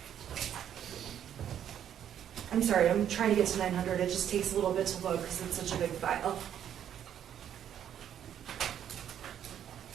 I'm sorry, I'm trying to get to 900. It just takes a little bit to load because it's such a big file.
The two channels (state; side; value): quieter; left; 9.8 dB